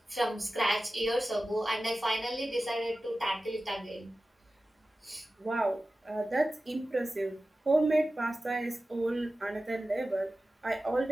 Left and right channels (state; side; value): normal; both; correlation 0.95